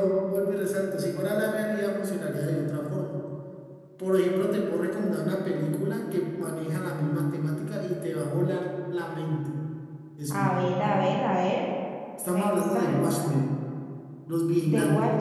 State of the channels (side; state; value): both; identical; correlation 1.00